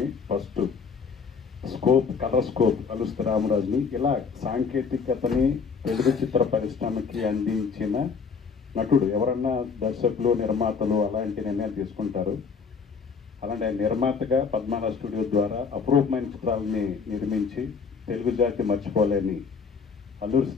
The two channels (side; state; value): right; quieter; 5.6 dB